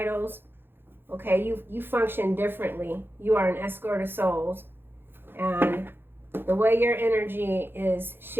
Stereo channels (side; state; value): left; late; 0.10 ms